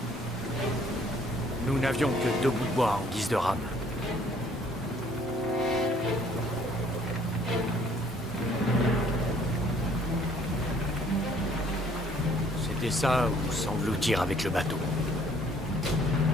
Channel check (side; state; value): both; normal; correlation 0.60